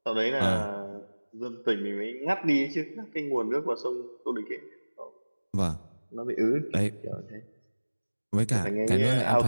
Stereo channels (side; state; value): both; inverted; correlation -1.00